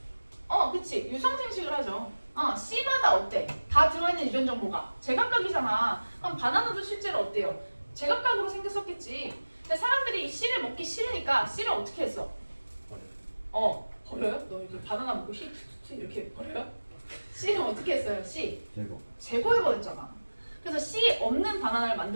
그치. 유성생식을 하죠. C마다 어때? 다 들어있는 유전 정보가 제각각이잖아. 그럼 바나나도 실제로 어때요? 제각각으로 생겼었겠지. 근데 사람들이 C를 먹기 싫으니까 C를 어떻게 했어? 버려요? 너 이렇게 바나나 먹고 C 이렇게 버려요? C는 어떻게 했어요? C 제거해버렸잖아. 그래서 C 없는 바나나를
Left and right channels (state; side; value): inverted; both; correlation -1.00